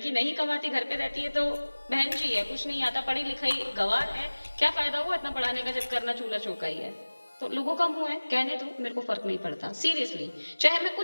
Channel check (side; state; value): both; inverted; correlation -1.00